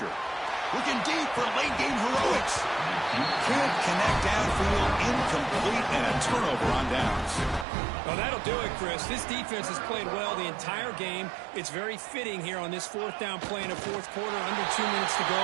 Looking deep for late-game heroics. Can't connect downfield, incomplete, and a turnover on downs. Well, that'll do it, Chris. This defense has played well the entire game. It's very fitting here on this 4th down play in the 4th quarter. Under 2 minutes to go,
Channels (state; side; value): drops out; left; at 7.7 s